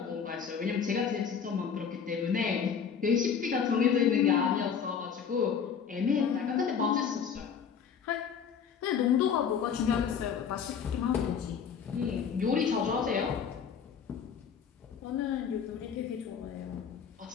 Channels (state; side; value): quieter; right; 7.1 dB